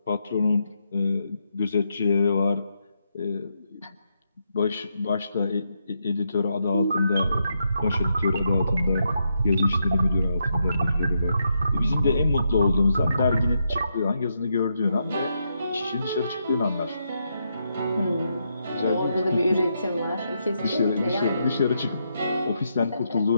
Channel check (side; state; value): both; inverted; correlation -0.81